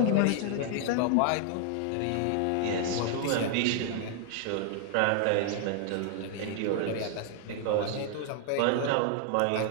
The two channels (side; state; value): both; different; correlation 0.00